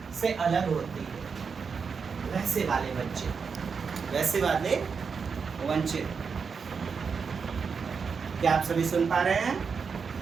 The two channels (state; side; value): quieter; left; 5.7 dB